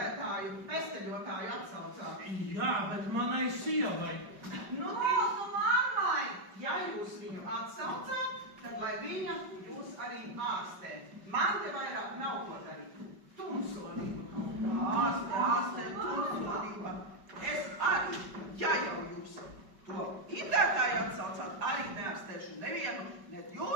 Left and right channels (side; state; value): left; late; 5.2 ms